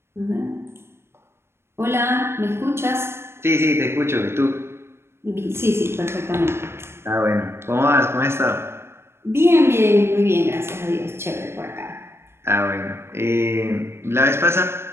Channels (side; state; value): left; late; 0.12 ms